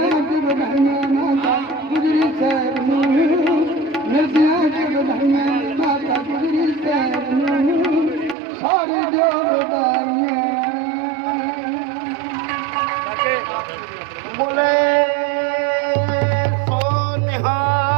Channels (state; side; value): drops out; left; at 8.3 s